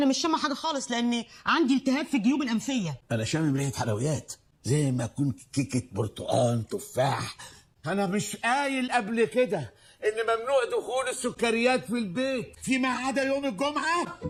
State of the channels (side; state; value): both; identical; correlation 1.00